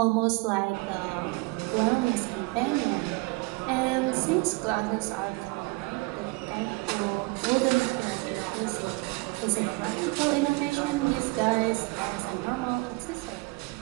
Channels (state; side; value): quieter; left; 26.1 dB